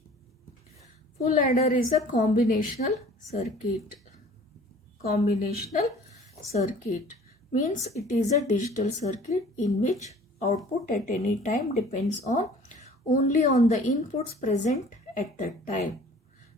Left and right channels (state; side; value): normal; both; correlation 0.49